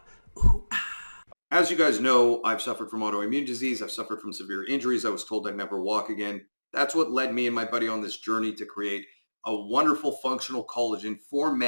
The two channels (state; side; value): inverted; both; correlation -1.00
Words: Ooh, ah. As you guys know, I've suffered from autoimmune disease. I've suffered from severe injuries. I was told I'd never walk again. That's what led me and my buddy on this journey to create a wonderful functional collagen for